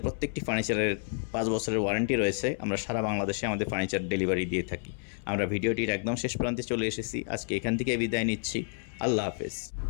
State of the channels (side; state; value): right; silent; 58 dB below the other